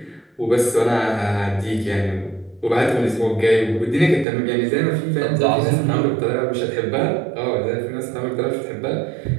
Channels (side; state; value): left; drops out; at 4.2 s